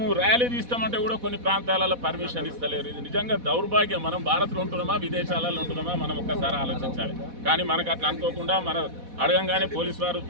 ర్యాలీ తీస్తామంటే కూడా కొన్ని ప్రాంతాలలో పర్మిషన్ ఇస్తలేరు. ఇది నిజంగా దౌర్భాగ్యం. మనం భారత్లో ఉంటున్నామా, విదేశాలలో ఉంటున్నామా, మనం ఒక్కసారి ఆలోచించాలి. కానీ మనకు అట్లా అనుకోకుండా మన అడగంగానే పోలీసు వారు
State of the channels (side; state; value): left; late; 4.1 ms